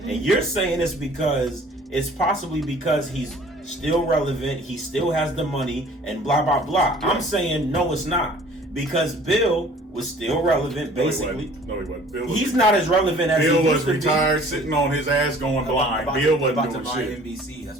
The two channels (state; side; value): normal; both; correlation 0.51